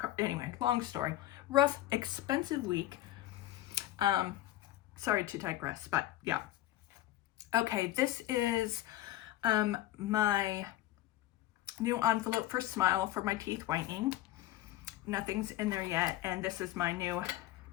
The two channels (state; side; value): quieter; right; 14.8 dB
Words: Anyway, long story. Rough, expensive week. Sorry to digress, but yeah. Okay, this is my new envelope for Smile for my teeth whitening. Nothing's in there yet, and this is my new